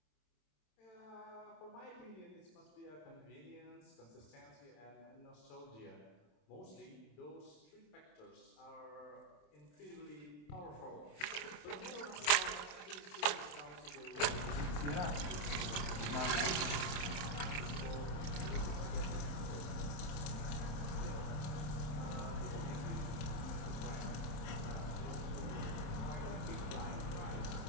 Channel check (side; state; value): right; late; 27 ms